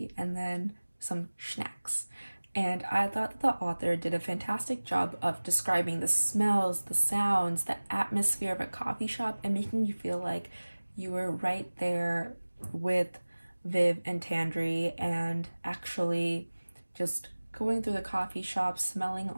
and then some snacks. And I thought the author did a fantastic job of describing the smells, the sounds, the atmosphere of a coffee shop, and making you feel like you were right there with Viv and Tandri, and actually just going through the coffee shop, smelling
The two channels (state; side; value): inverted; both; correlation -1.00